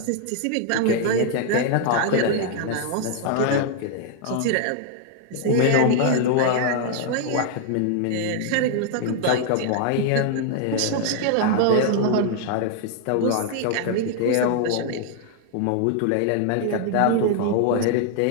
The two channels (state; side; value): different; both; correlation 0.00